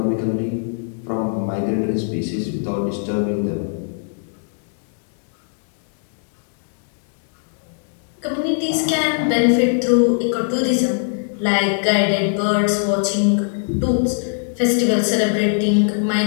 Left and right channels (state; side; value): silent; right; 66 dB below the other